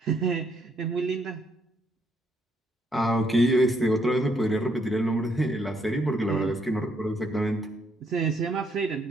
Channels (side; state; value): both; normal; correlation 0.72